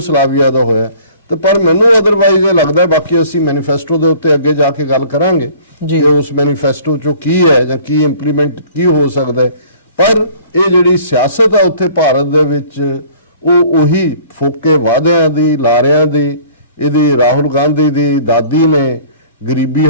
ਦਾ ਹੋਇਆ। ਤੇ ਪਰ ਮੈਨੂੰ ਅਦਰਵਾਈਜ਼ ਇਹ ਲੱਗਦਾ, ਬਾਕੀ ਅਸੀਂ ਮੈਨੀਫੈਸਟੋ ਦੇ ਉੱਤੇ ਅੱਗੇ ਜਾ ਕੇ ਗੱਲ ਕਰਾਂਗੇ ਕਿ ਉਸ ਮੈਨੀਫੈਸਟੋ 'ਚੋਂ ਕੀ ਹੈ ਜਾਂ ਕੀ ਇੰਪਲੀਮੈਂਟ ਕੀ ਹੋ ਸਕਦਾ ਹੈ, ਪਰ ਇਹ ਜਿਹੜੀ ਸਿਆਸਤ ਆ ਉੱਥੇ ਭਾਰਤ ਦੇ ਵਿੱਚ ਉਹ ਉਹੀ ਫੋਕੇ ਵਾਅਦਿਆਂ ਦੀ, ਲਾਰਿਆਂ ਦੀ। ਇਹਦੀ ਰਾਹੁਲ ਗਾਂਧੀ ਦੀ ਦਾਦੀ ਨੇ ਗਰੀਬੀ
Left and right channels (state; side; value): inverted; both; correlation -0.51